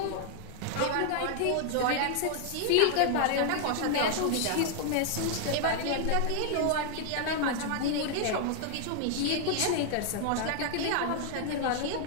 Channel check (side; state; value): both; different; correlation 0.00